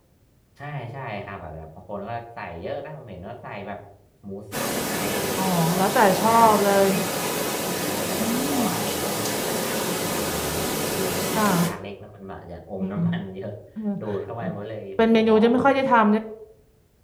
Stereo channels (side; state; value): both; identical; correlation 1.00